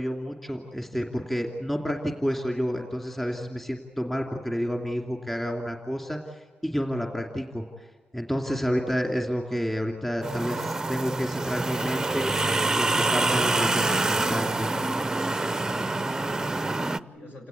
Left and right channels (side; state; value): both; normal; correlation 0.89